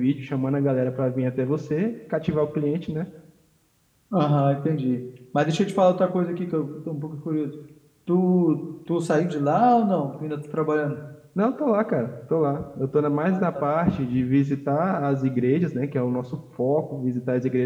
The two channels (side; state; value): both; identical; correlation 1.00